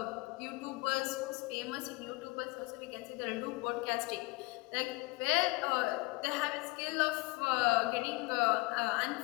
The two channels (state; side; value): quieter; right; 24.1 dB